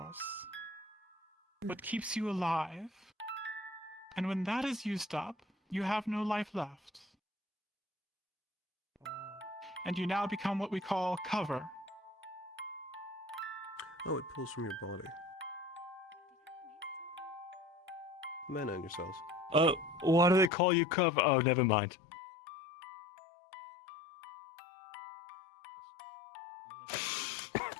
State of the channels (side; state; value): right; drops out; at 20.5 s